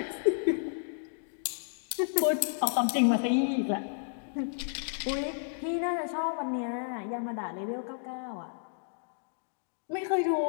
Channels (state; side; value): silent; right; digital silence